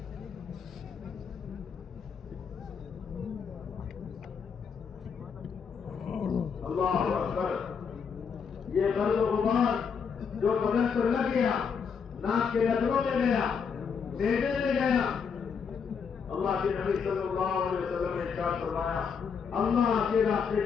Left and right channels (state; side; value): quieter; right; 6.3 dB